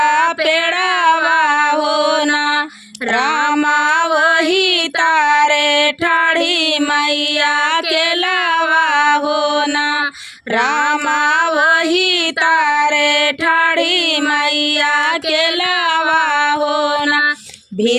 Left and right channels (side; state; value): both; identical; correlation 1.00